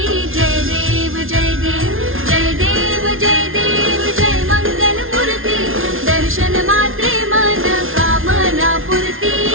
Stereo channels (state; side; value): late; left; 0.60 ms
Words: जय देव जय देव जय देव जय देव जय मंगल मूर्ती। दर्शन मात्रे मन कामना पूर्ती।